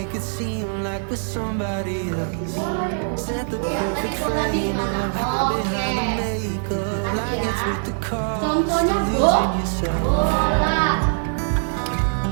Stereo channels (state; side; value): silent; left; 64 dB below the other